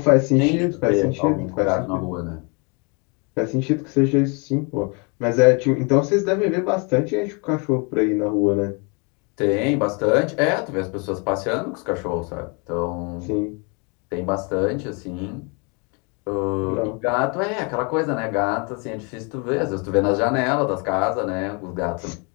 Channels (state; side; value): quieter; right; 33.0 dB